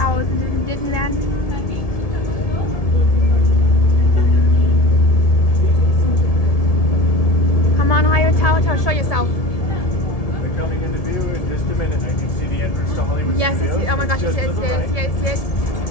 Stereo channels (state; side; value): late; right; 1.7 ms